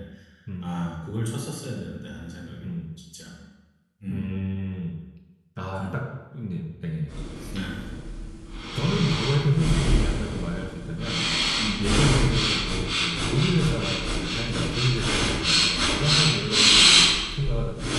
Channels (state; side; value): identical; both; correlation 1.00